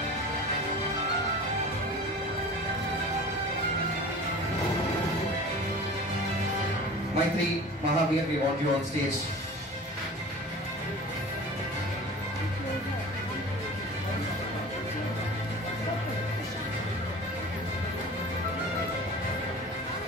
Maitri, Mahavir, we want you on stage.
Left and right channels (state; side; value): normal; both; correlation 0.39